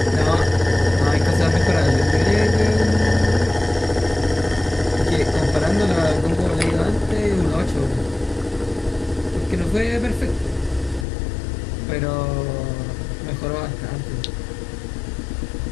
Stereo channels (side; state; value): right; drops out; at 11.1 s